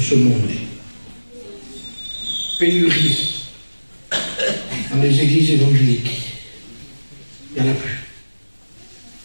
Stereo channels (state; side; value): inverted; both; correlation -1.00